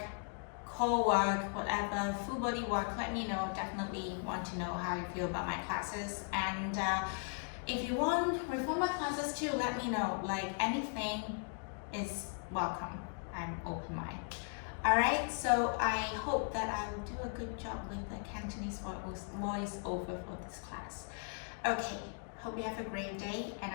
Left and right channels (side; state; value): right; silent; 53 dB below the other